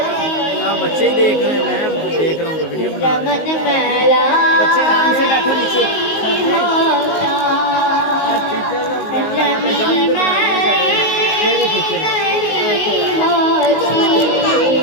आप बच्चे ही देख रहे हैं, मैं देख रहा हूँ तो वीडियो बना रहे हैं। बच्चे आराम से बैठो नीचे।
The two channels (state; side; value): late; right; 19 ms